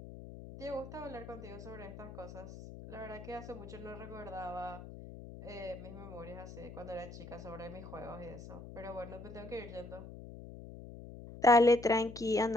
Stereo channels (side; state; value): left; noise; hum, 13 dB below the sound